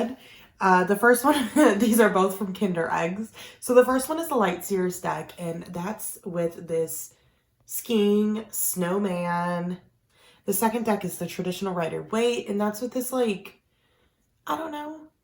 The first one, these are both from Kinder Eggs. So the first one is the Light Seers deck, and that's with this skiing snowman. The second deck is the traditional Rider-Waite, and that's with this, like, I don't know,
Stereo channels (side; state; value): both; identical; correlation 1.00